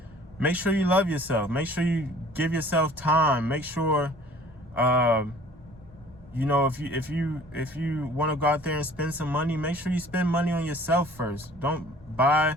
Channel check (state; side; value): normal; both; correlation 0.51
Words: make sure you love yourself. Make sure you give yourself time. Make sure, you know, if you want to go out there and spend some money, make sure you spend money on yourself first. Don't buy